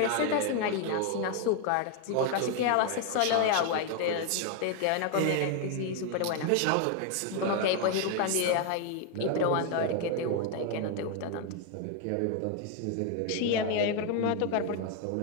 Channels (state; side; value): different; both; correlation 0.01